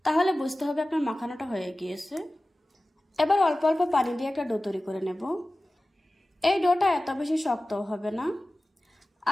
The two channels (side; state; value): both; normal; correlation 0.96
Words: তাহলে বুঝতে হবে আপনার মাখানোটা হয়ে গিয়েছে। এবার অল্প অল্প পানি দিয়ে একটা ডো তৈরি করে নেব। এই ডোটা এত বেশি শক্তও হবে না,